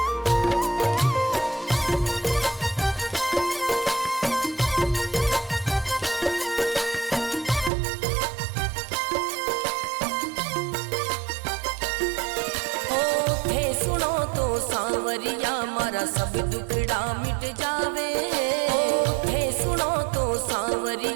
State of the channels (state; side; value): drops out; left; at 7.7 s